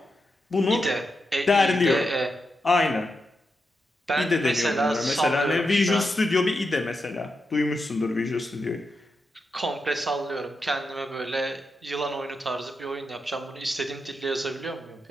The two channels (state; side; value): normal; both; correlation 0.86